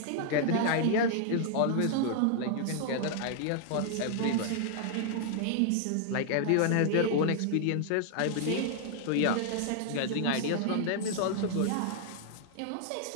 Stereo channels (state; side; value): different; both; correlation 0.00